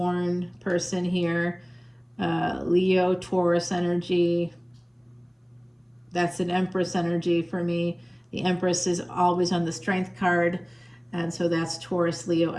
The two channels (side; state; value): both; identical; correlation 1.00